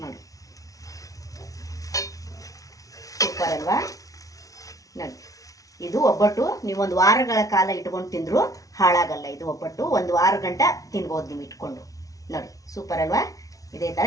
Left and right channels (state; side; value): late; right; 0.17 ms